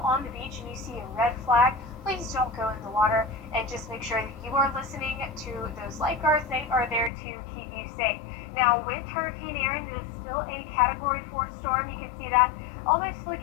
on the beach and you see a red flag, please don't go in the water, and just make sure that you are listening to those lifeguards. They are there to keep you safe. Now with Hurricane Erin, it is still a Category 4 storm. You can see that almost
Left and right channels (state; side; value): drops out; right; at 7.1 s